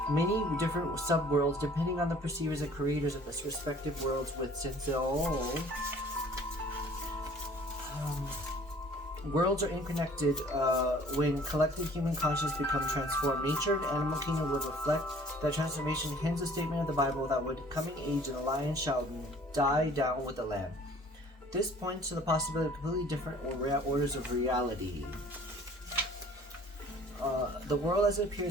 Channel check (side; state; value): both; normal; correlation 0.52